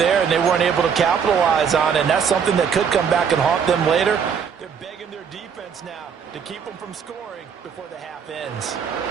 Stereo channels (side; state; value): left; quieter; 7.0 dB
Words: and they weren't able to capitalize on it, and that's something that could come back and haunt them later. They're begging their defense now to keep them from scoring before the half ends.